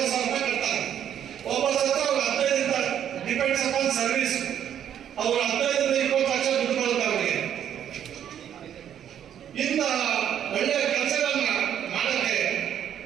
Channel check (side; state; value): left; quieter; 9.7 dB